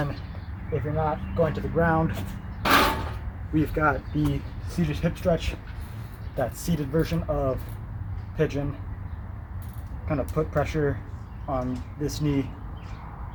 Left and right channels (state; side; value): identical; both; correlation 1.00